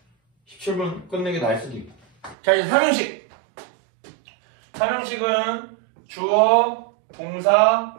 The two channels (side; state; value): left; drops out; at 2.4 s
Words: 17분 끝내는 게 나을 수도 있고. 자, 이제 3형식. 3형식은 주어, 동사,